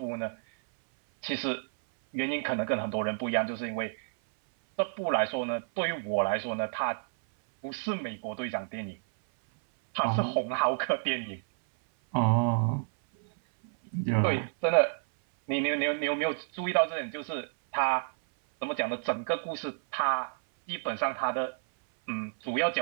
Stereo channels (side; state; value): left; silent; 58 dB below the other